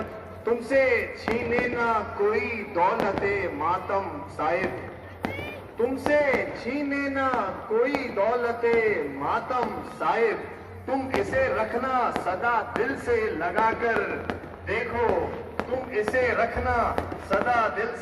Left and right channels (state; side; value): identical; both; correlation 1.00